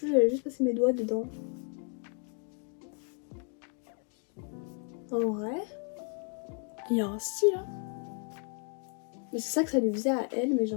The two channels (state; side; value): quieter; right; 39.9 dB